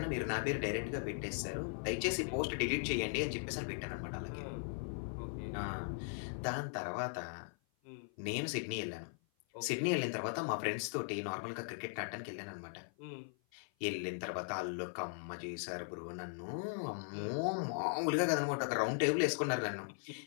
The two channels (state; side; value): silent; right; 52 dB below the other